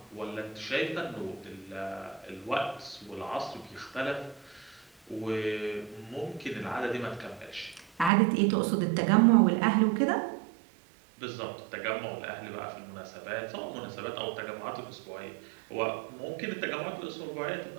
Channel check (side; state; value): left; drops out; at 8.1 s